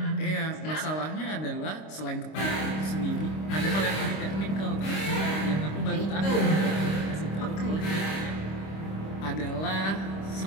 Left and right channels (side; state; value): right; late; 26 ms